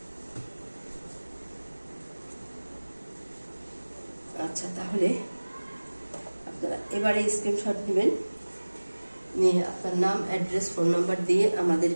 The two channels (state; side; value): inverted; both; correlation -1.00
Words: আচ্ছা, তাহলে আপনারা এবারে স্ক্রিনশট নেবেন, নিয়ে আপনার নাম, অ্যাড্রেস, ফোন নাম্বার দিয়ে